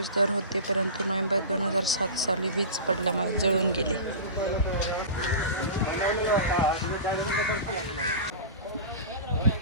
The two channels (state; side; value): inverted; both; correlation -0.30